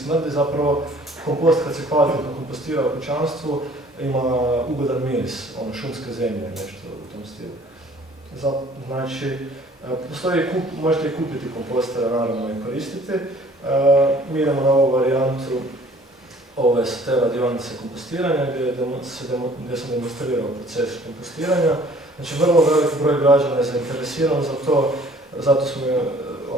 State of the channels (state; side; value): normal; both; correlation 0.54